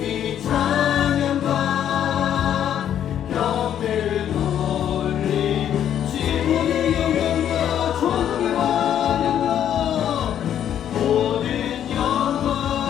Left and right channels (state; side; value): quieter; right; 10.0 dB